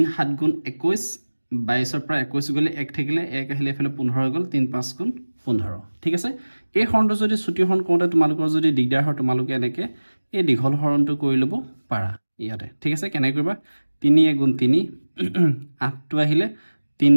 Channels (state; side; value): inverted; both; correlation -1.00